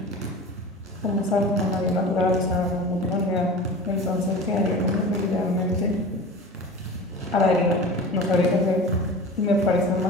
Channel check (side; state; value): both; normal; correlation 0.35